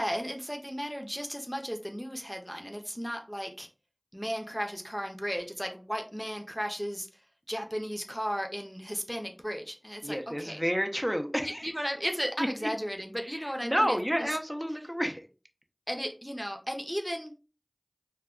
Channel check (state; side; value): identical; both; correlation 1.00